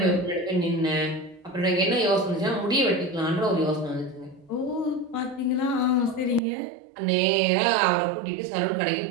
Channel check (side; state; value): left; drops out; at 6.4 s